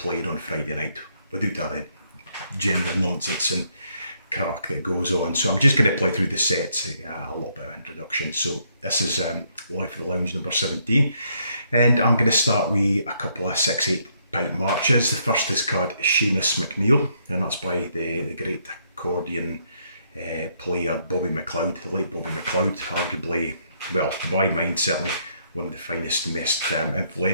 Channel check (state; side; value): inverted; both; correlation -0.72